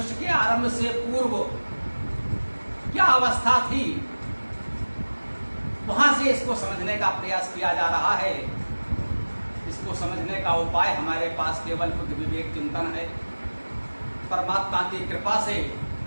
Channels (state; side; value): inverted; both; correlation -1.00